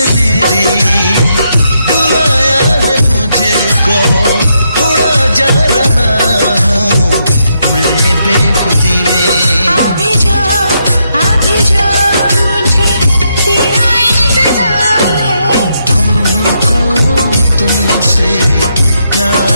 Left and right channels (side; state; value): both; inverted; correlation -0.79